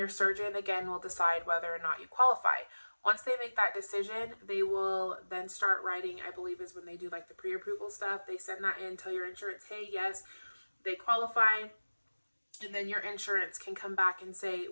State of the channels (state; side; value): inverted; both; correlation -1.00